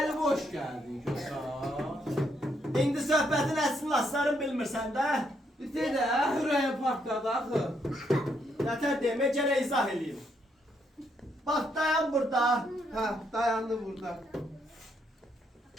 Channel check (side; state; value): both; normal; correlation 0.75